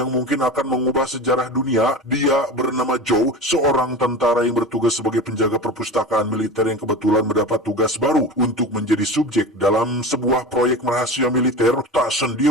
mungkin akan mengubah sejarah dunia. Dia bernama Joe, seorang tentara yang bertugas sebagai penjaga perpustakaan militer yang kebetulan mendapat tugas baru untuk menjadi subjek dalam sebuah proyek rahasia militer. Tak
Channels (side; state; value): both; normal; correlation 0.30